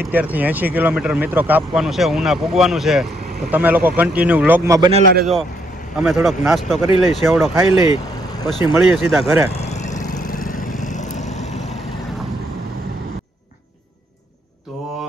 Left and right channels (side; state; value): both; normal; correlation 0.72